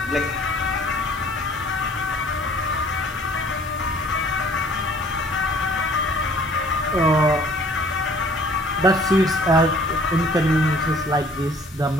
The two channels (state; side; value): normal; both; correlation 0.54